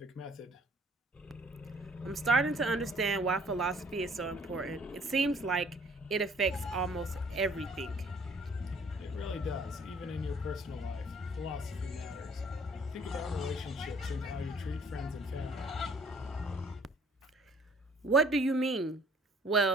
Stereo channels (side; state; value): both; normal; correlation 0.58